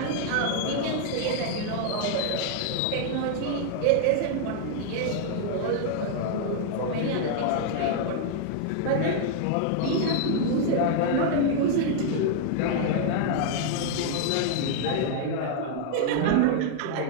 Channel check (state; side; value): different; both; correlation 0.00